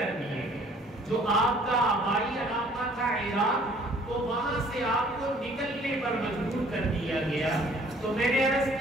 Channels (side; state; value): both; normal; correlation 0.56